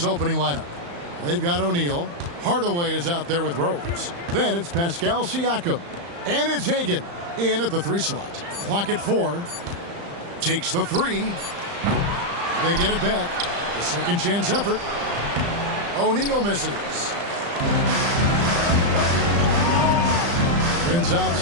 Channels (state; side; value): late; left; 35 ms